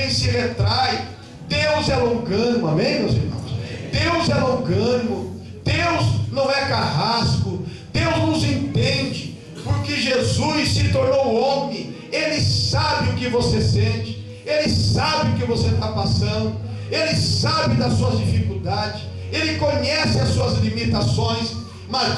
se retrai. Deus é longânimo, amém, meus irmãos? Deus é longânimo, Deus não é carrasco, Deus nos entende, porque Jesus se tornou homem. Ele sabe o que você sente, Ele sabe o que você está passando, Ele sabe das suas dificuldades, Ele conhece as suas limitações.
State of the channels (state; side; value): identical; both; correlation 1.00